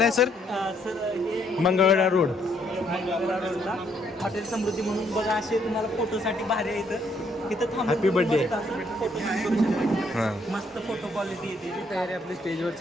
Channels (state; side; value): normal; both; correlation 0.70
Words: आहे सर? सर हे मंगळवेढा रोड. मंगळवेढा रोडला हॉटेल समृद्धी म्हणून. बघा असे तुम्हाला फोटोसाठी भारी आहे इथं थांबून. Happy birthday. फोटो करू शकता. हां मस्त फोटो क्वालिटी येते. तयारी आपली स्टेजवर